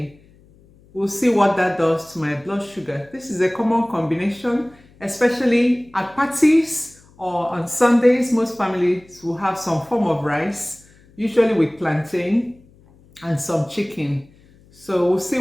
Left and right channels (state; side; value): noise; left; hum, 28 dB below the sound